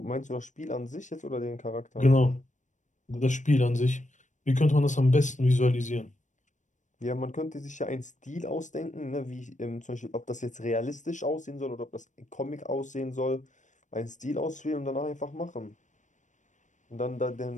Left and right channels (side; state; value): right; late; 0.36 ms